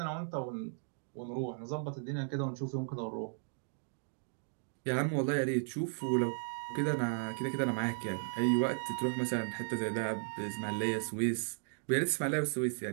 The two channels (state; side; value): silent; left; digital silence